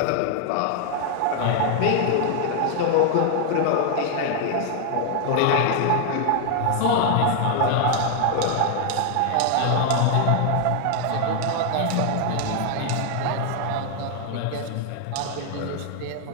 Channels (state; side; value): different; both; correlation 0.00